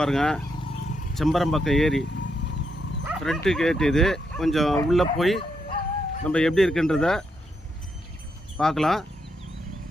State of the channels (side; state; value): both; normal; correlation 0.80